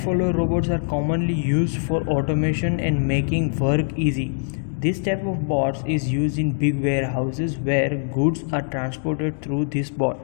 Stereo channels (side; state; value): right; silent; digital silence